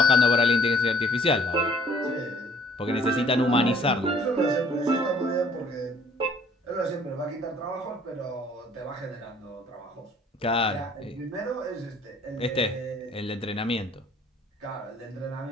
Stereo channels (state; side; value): normal; both; correlation 0.58